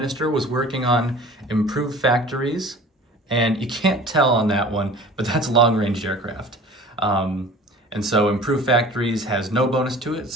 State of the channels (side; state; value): both; normal; correlation 0.43